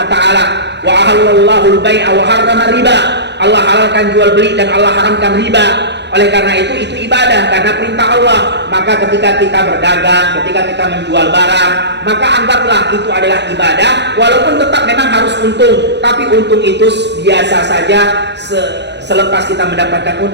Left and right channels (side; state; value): left; late; 0.50 ms